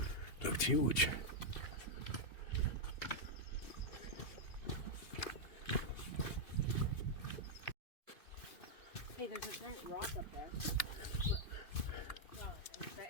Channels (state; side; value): late; right; 2.8 ms